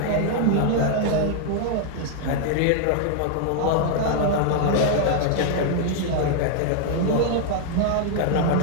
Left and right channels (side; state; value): both; different; correlation 0.00